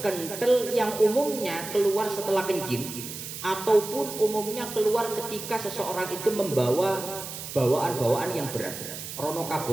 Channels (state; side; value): noise; right; hiss, 9 dB below the sound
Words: yang umumnya keluar setelah kencing, ataupun umumnya keluar ketika seseorang itu membawa bawaan-bawaan yang berat. Rono